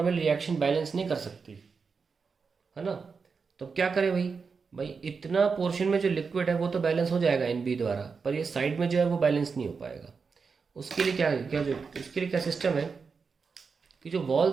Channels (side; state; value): left; quieter; 5.2 dB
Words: रिएक्शन बैलेंस नहीं कर सकती, है ना. तो क्या करें भाई इतना पोर्शन में जो लिक्विड है वो तो बैलेंस हो जाएगा एन बी द्वारा, पर ये साइड में जो है वो बैलेंस नहीं हो पाएगा. उसके लिए उसके लिए क्या सिस्टम है कि जो